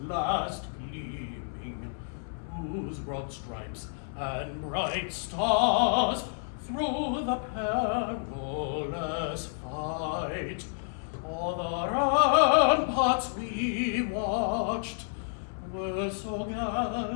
gleaming, whose broad stripes and bright stars through the perilous fight o'er the ramparts we watched were so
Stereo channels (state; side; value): silent; right; 58 dB below the other